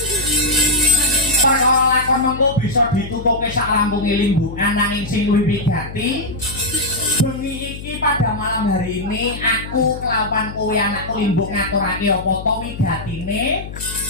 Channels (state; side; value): noise; left; hum, 11 dB below the sound